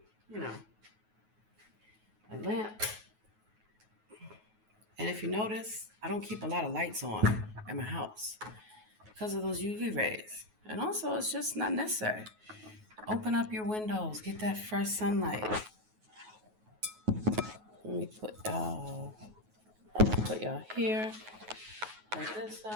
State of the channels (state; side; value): late; left; 9.3 ms